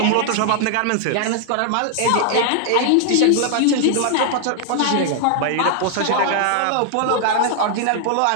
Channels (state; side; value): different; both; correlation 0.00